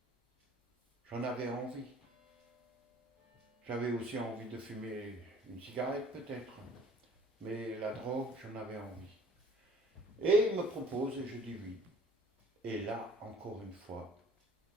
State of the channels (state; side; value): normal; both; correlation 0.52